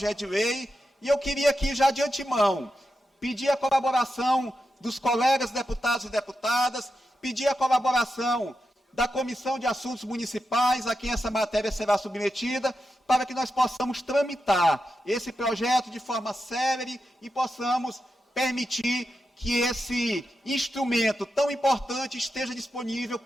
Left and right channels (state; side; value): normal; both; correlation 0.88